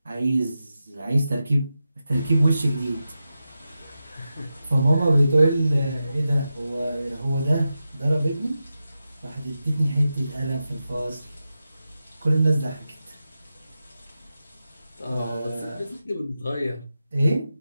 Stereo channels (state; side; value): inverted; both; correlation -0.91